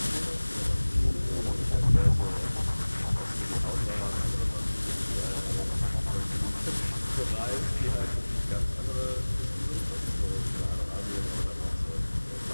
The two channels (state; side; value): inverted; both; correlation -1.00